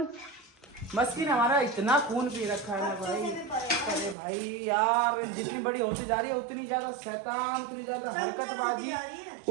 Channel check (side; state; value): left; drops out; at 4.2 s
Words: मस्की ने हमारा इतना खून पी रखा है ना भाई। अरे भाई यार, जितनी बड़ी होती जा रही है उतनी ज्यादा शैतान, उतनी ज्यादा हरकतबाजी,